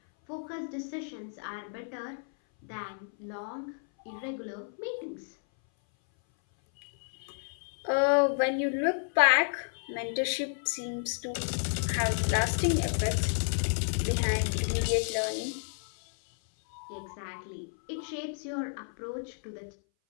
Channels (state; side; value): silent; right; 57 dB below the other